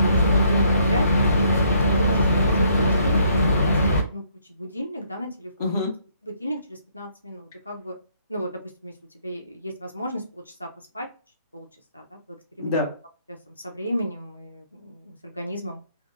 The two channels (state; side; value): inverted; both; correlation -0.67